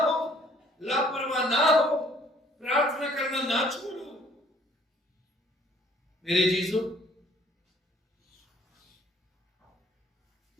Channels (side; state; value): both; normal; correlation 0.59